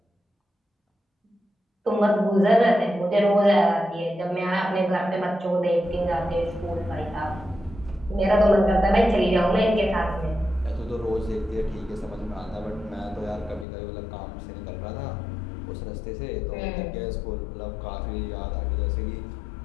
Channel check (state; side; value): drops out; right; at 13.7 s